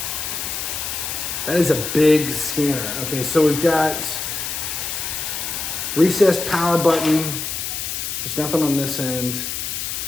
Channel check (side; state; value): left; noise; hiss, 4 dB below the sound